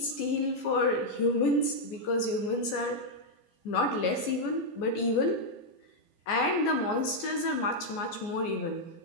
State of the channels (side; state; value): right; late; 14 ms